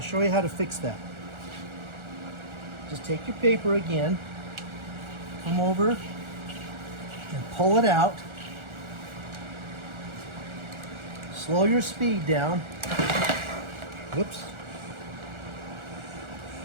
you how to fix that. Just take your paper again, come over and pull it out. Slow your speed down. Whoops.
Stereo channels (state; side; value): late; left; 1.4 ms